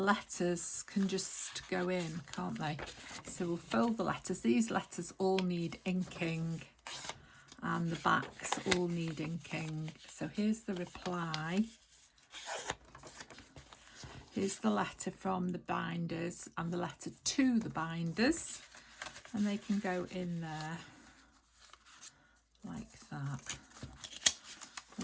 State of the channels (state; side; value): identical; both; correlation 1.00